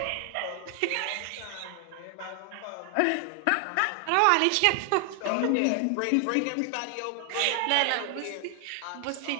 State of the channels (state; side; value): different; both; correlation 0.00